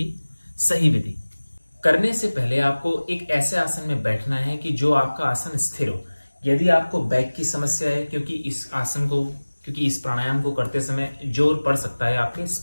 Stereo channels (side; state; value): both; inverted; correlation -1.00